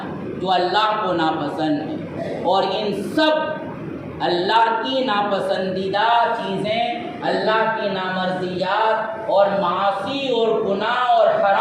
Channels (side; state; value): both; identical; correlation 1.00